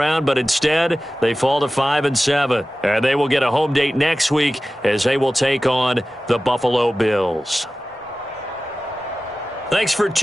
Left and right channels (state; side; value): normal; both; correlation 0.96